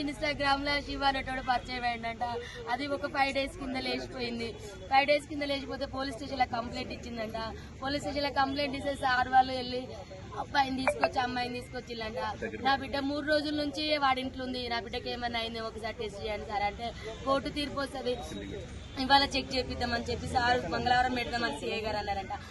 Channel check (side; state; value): both; identical; correlation 1.00